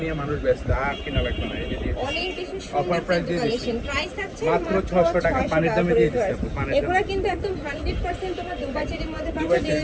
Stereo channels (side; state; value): both; identical; correlation 1.00